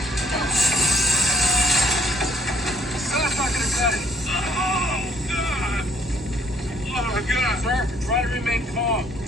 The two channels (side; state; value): both; normal; correlation 0.64